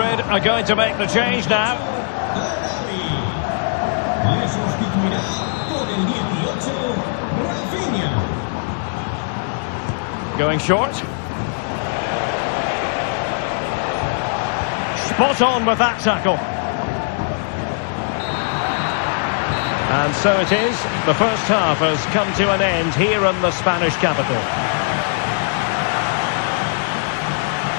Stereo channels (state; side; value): silent; right; digital silence